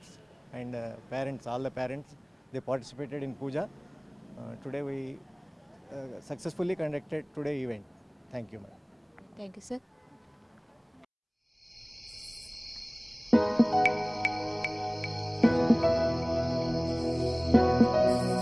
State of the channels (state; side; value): identical; both; correlation 1.00